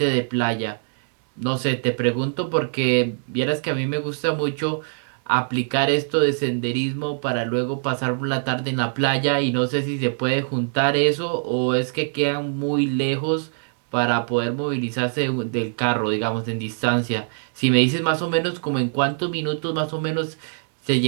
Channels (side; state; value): left; silent; 63 dB below the other